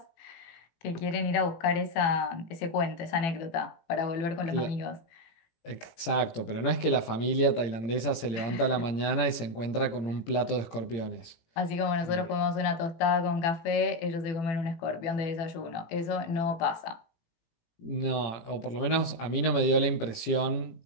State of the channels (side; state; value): right; late; 18 ms